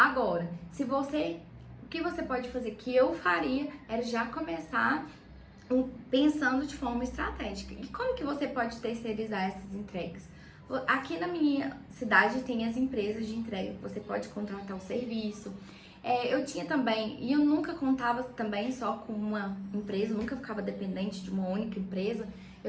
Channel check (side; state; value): both; identical; correlation 1.00